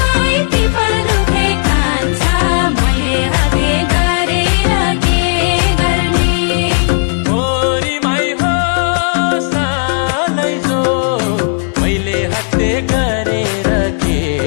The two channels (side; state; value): right; silent; 56 dB below the other